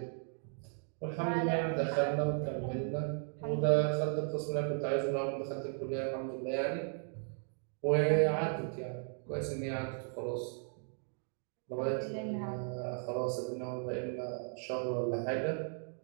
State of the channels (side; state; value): left; silent; 54 dB below the other